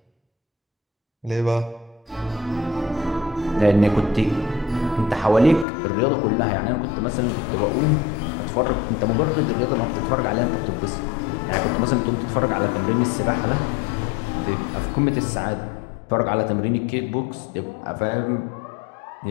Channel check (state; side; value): drops out; right; at 5.7 s